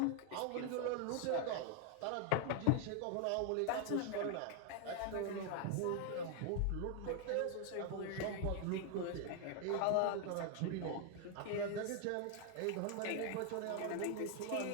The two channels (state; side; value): different; both; correlation 0.00